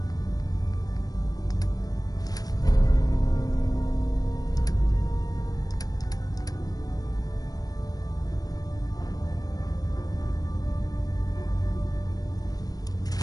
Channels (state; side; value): late; right; 0.18 ms